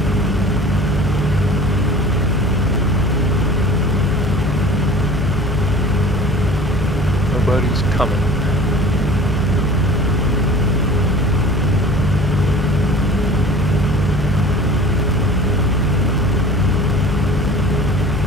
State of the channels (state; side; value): normal; both; correlation 0.42